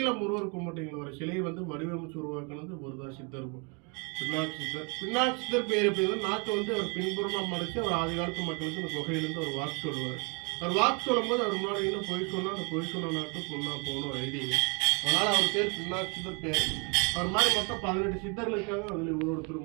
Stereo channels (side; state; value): left; quieter; 33.0 dB